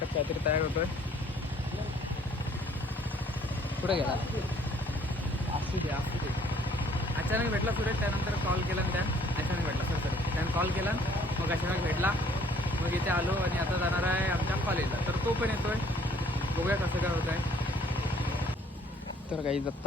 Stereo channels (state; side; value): normal; both; correlation 0.60